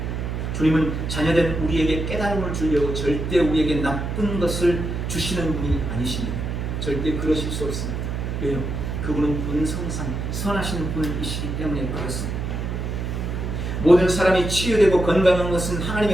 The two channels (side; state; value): right; noise; hum, 3 dB below the sound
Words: 주님은 자녀된 우리에게 깨달음을 주려고 절대 우리에게 나쁜 것을 주시는 분이 아니십니다. 절대 그러실 수 없습니다. 왜요? 그분은 본성상 선하신 분이시기 때문에 그렇습니다. 모든 사람이 치유되고 건강한 것은